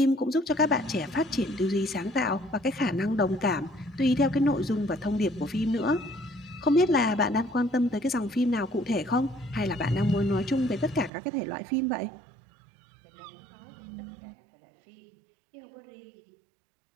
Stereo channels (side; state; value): left; drops out; at 11.1 s